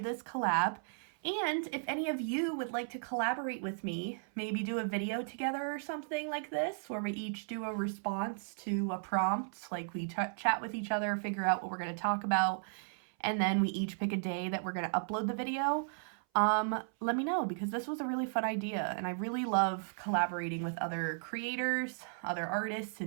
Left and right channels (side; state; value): left; silent; 54 dB below the other